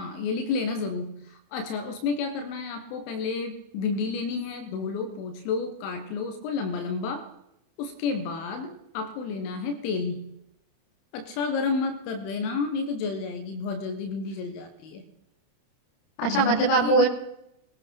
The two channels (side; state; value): right; late; 31 ms